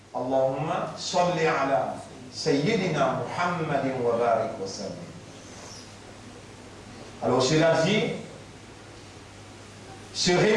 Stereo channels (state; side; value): identical; both; correlation 1.00